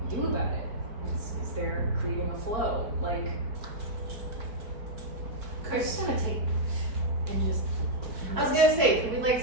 do about it? Is there creating a flow? Like, I just want to take and just. I was gonna say, can we like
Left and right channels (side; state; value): left; late; 4.5 ms